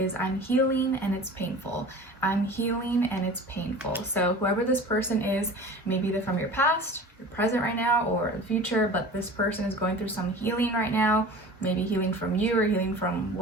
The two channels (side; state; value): both; normal; correlation 0.38